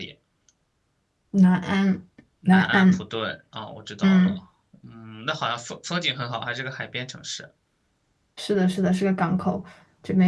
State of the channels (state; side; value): identical; both; correlation 1.00